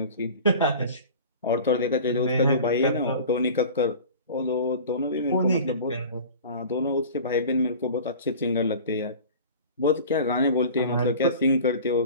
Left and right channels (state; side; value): inverted; both; correlation -0.39